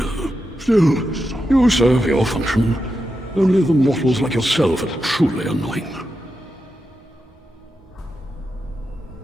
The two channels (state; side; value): normal; both; correlation 0.88